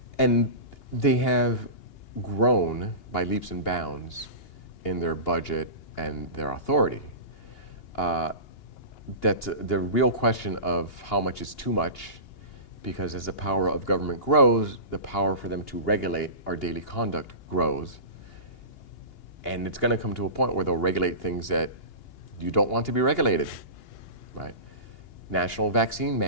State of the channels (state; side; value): late; right; 2.8 ms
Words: And they have grown by leaps and bounds in their budget and their authority. That's the real question of how much is too much, because as the power of government grows, the power for them to regulate our daily conduct grows. And it's going to come to a point where they'll regulate things that you don't want to be regulated, right? National vaccine